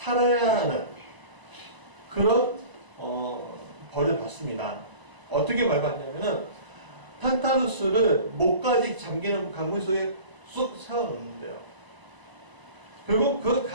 하는 그런 벌을 받습니다. 어떻게 벌 받냐면은 탄탈루스를 목까지 잠기는 강물 속에 쑥 세워놓는데요. 그리고 그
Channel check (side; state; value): left; late; 1.0 ms